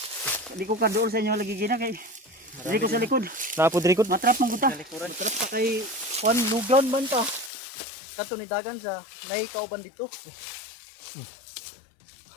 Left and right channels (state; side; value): drops out; right; at 7.5 s